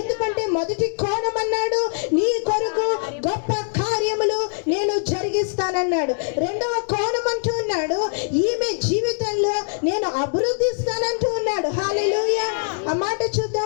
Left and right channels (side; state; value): right; silent; digital silence